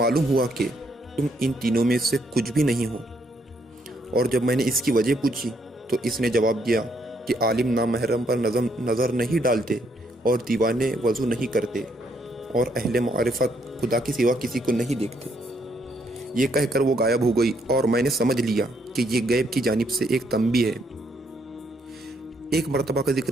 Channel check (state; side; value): normal; both; correlation 0.72